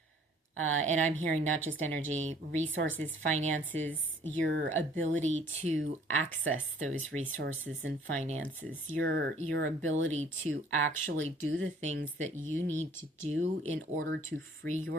And I'm hearing not just energy, resources, finances, your ability to access those resources and finances, your ability to actually do the things that you need to do in order to free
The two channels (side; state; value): both; normal; correlation 0.56